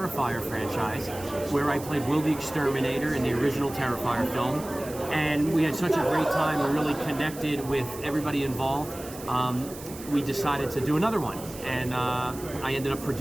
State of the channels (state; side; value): noise; right; hiss, 15 dB below the sound